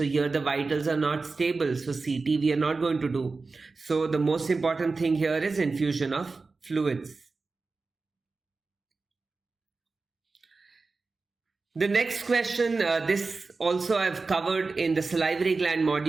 here the vitals are not stable. So CT we are not going to do. So the most important thing here is infusion of fluids. The next question, this also I've covered in the salivary gland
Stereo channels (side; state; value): left; quieter; 4.0 dB